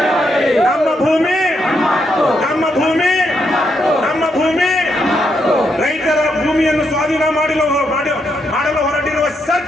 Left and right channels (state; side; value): normal; both; correlation 0.79